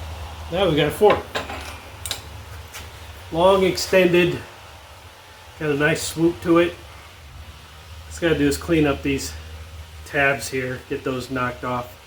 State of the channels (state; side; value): identical; both; correlation 1.00